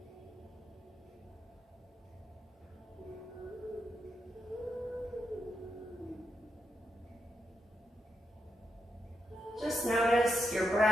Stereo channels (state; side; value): normal; both; correlation 0.83